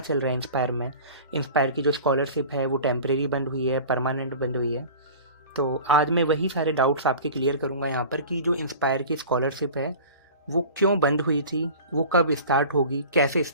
रहा है इंस्पायर में। इंस्पायर की जो स्कॉलरशिप है वो टेम्परेरी बंद हुई है, परमानेंट बंद हुई है। तो आज मैं वही सारे डाउट्स आपके क्लियर करूँगा यहाँ पर कि जो इंस्पायर की स्कॉलरशिप है वो क्यों बंद हुई थी, वो कब स्टार्ट होगी, कैसे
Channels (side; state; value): both; inverted; correlation -0.39